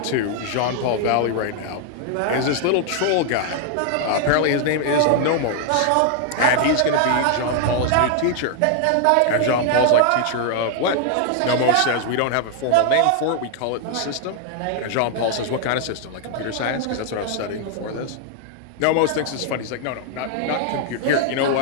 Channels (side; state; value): both; different; correlation 0.00